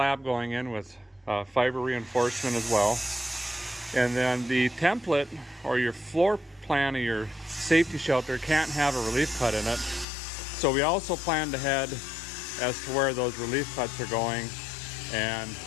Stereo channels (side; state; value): right; drops out; at 10.1 s